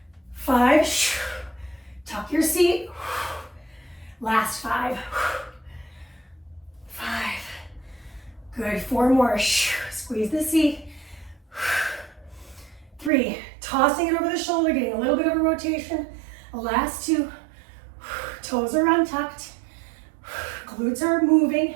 5, tuck your seat. Last 5. 5, good. 4 more. Squeeze the seat. 3, tossing it over the shoulder, getting a little bit of a rotation. Last 2, toes are untucked. Glutes are moving.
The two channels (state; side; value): drops out; left; at 13.1 s